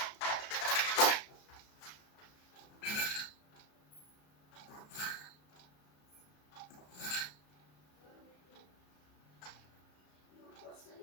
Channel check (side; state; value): right; late; 34 ms